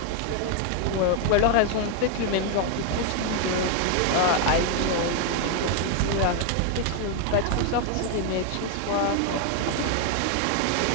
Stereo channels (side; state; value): both; different; correlation 0.01